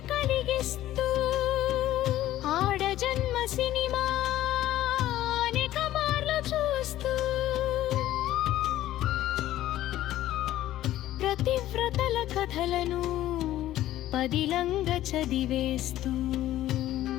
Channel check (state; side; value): quieter; right; 14.0 dB